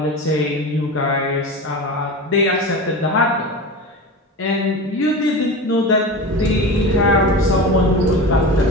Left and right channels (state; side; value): normal; both; correlation 0.28